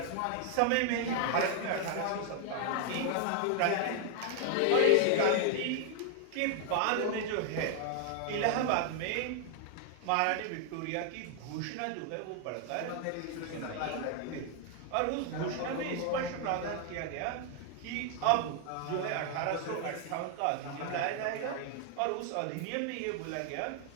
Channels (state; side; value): different; both; correlation 0.00